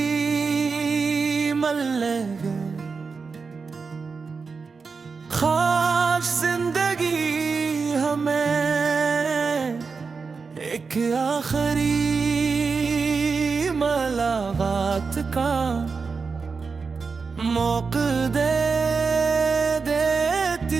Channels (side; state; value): left; quieter; 4.9 dB